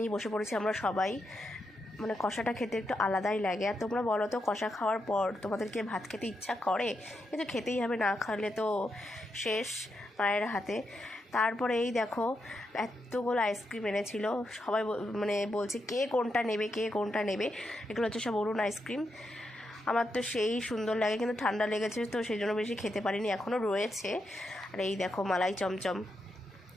বসে পড়েছি আমরা সবাই। মানে কষাটা খেতে একটু আলাদাই লাগে। আর তোমরা বলো তো কষা খাওয়ার পর তোমাদেরকে ভাত খেতে ইচ্ছা করে? কিন্তু খেতেই হবে, না খাওয়ালে তো শেষ মায়ের হাতে। তারপরে এই দেখো এতগুলো আইসক্রিম এনেছিল, সবাই মানে বলছে কে কোনটা নেবে। এগুলো হচ্ছে সব অরুণ আইসক্রিম। আমার তো সেই সুন্দর লাগে, কিন্তু ঠান্ডা লেগেছে তো সেই জন্য বেশি খেতে পারিনি, এখনও রয়েছে। আর এই দেখো মালাই চমচম,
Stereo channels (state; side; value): normal; both; correlation 0.84